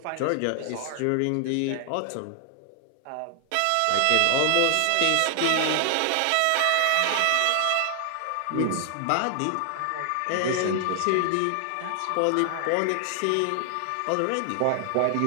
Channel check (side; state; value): both; different; correlation 0.00